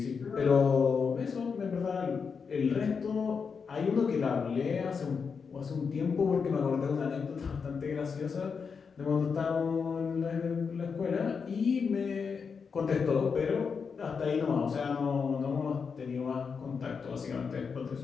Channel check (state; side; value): quieter; right; 5.7 dB